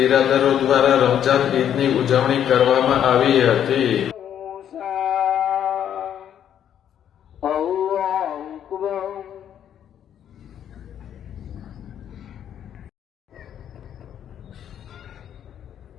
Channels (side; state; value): right; quieter; 9.7 dB